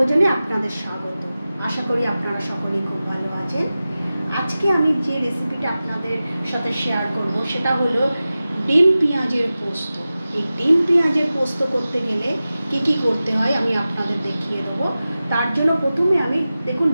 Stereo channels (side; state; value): both; inverted; correlation -0.95